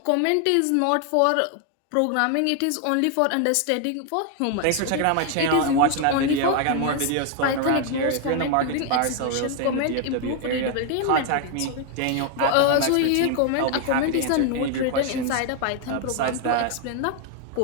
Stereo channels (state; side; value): different; both; correlation 0.01